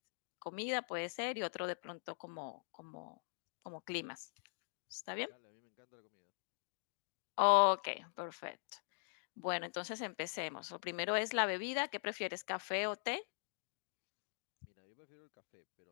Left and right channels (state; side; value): silent; right; digital silence